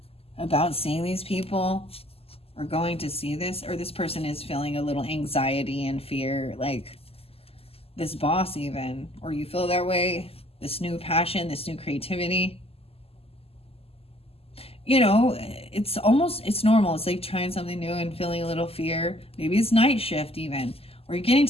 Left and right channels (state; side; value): late; right; 0.29 ms